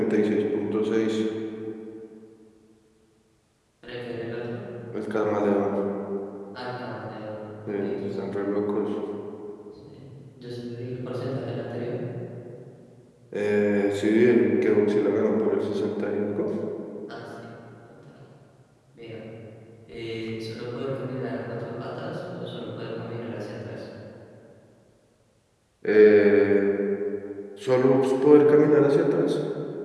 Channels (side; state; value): both; identical; correlation 1.00